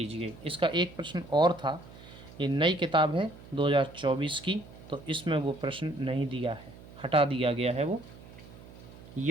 इसका एक प्रश्न और था, ये नई किताब है 2024 की, तो इसमें वो प्रश्न नहीं दिया है, हटा दिया गया है। वो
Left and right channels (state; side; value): noise; right; hum, 18 dB below the sound